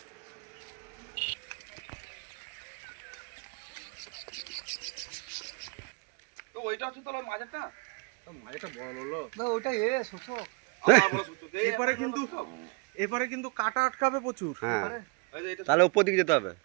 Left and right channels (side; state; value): left; quieter; 33.4 dB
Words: ওইটা হচ্ছে তোর মাঝেরটা, মাঝেরটা বড় হলো ওইটা শোষক। এবারে কিন্তু কাটা আটকাবে প্রচুর। হ্যাঁ, তাহলে উপর দিকে যেতে হবে।